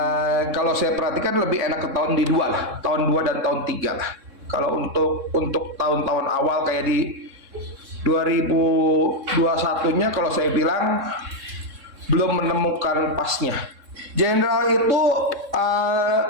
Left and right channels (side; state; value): left; late; 3.6 ms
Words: Kalau saya perhatikan lebih enak ke tahun di 2 lah, tahun 2 dan tahun 3 lah. Kalau untuk tahun-tahun awal kayak di 2021-nya, kalau saya bilang belum menemukan pasnya. Jenderal itu